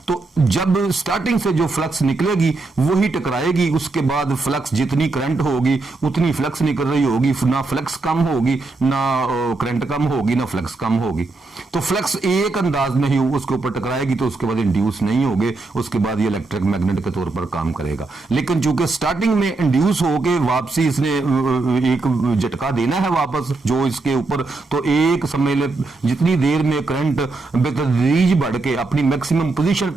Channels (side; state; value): left; quieter; 3.5 dB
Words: तो जब स्टार्टिंग से जो फ्लक्स निकलेगी वही टकराएगी, उसके बाद फ्लक्स जितनी करंट होगी उतनी फ्लक्स निकल रही होगी, ना फ्लक्स कम होगी, ना करंट कम होगी, ना फ्लक्स कम होगी। तो फ्लक्स एक अंदाज में ही उसके ऊपर टकराएगी तो उसके बाद इंड्यूस नहीं होगे, उसके बाद ये इलेक्ट्रिक मैग्नेट के तौर पर काम करेगा। लेकिन चूंकि स्टार्टिंग में इंड्यूस होके वापसी इसने एक झटका देना है वापस जो इसके ऊपर, तो एक समझ ले जितनी देर में करंट बेतदरीज बढ़ के अपनी मैक्सिमम पोजीशन